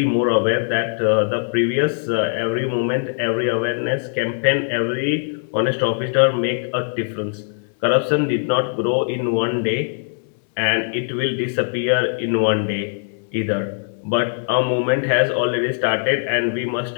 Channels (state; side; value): silent; right; 65 dB below the other